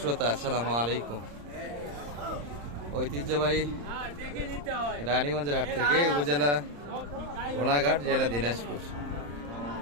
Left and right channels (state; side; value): late; left; 34 ms